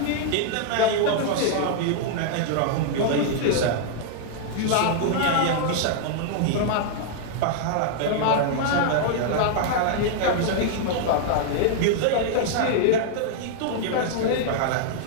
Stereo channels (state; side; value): different; both; correlation -0.01